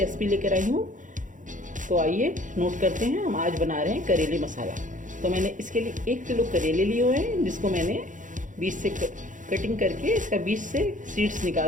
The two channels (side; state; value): left; late; 0.37 ms